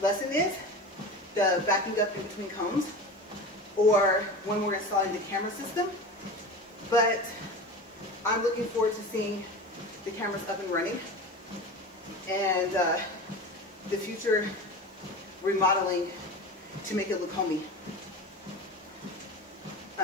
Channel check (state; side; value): normal; both; correlation 0.31